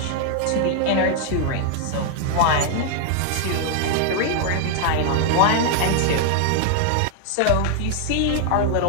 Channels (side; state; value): both; different; correlation 0.00